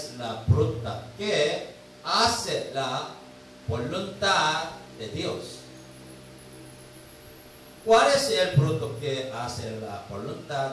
la fruta que hace la voluntad de Dios. ¿Cuál es el fruto que hace la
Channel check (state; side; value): identical; both; correlation 1.00